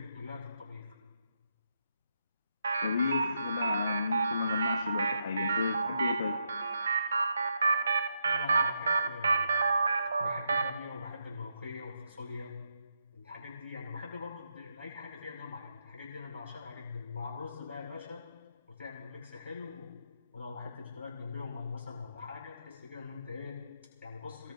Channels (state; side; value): inverted; both; correlation -0.80